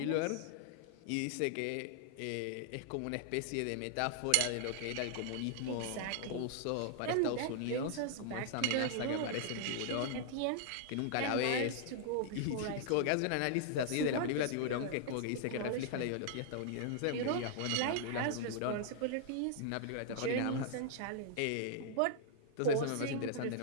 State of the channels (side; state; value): both; different; correlation -0.01